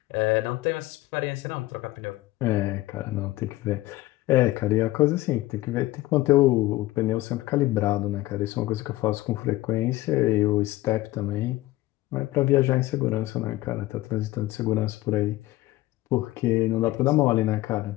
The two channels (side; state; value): right; quieter; 17.6 dB